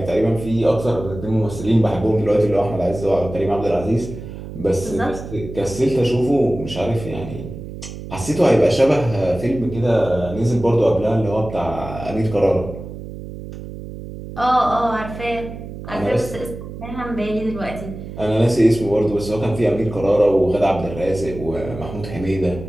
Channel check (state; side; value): noise; right; hum, 11 dB below the sound